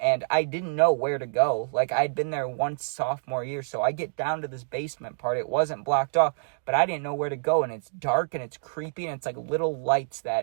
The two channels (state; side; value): silent; left; digital silence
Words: and I didn't know where to go. Like, I'd been there once sophomore year, so I get down to this basement part. It wasn't blocked off, but I didn't know where to go, and it's dark, and it's creepy, and it's like little lights